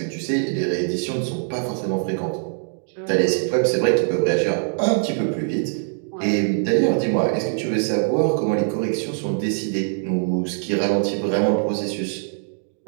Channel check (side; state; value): left; silent; 64 dB below the other